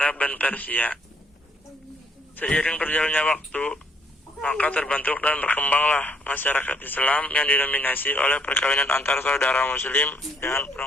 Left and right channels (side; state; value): both; normal; correlation 0.67